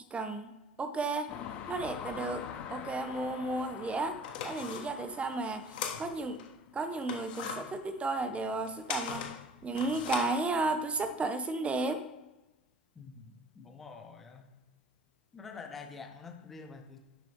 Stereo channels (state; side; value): normal; both; correlation 0.51